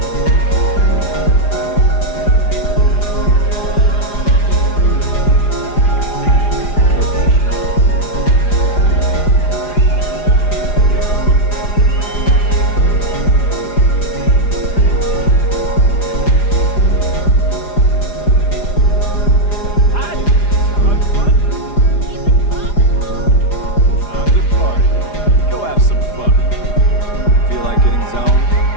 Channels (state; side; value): late; right; 4.9 ms